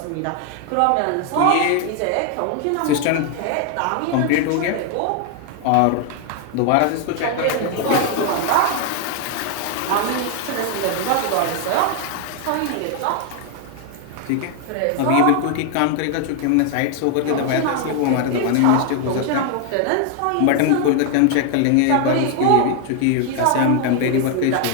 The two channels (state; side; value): different; both; correlation 0.00